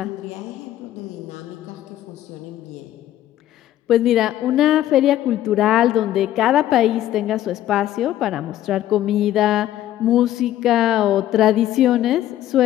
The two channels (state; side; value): quieter; right; 13.0 dB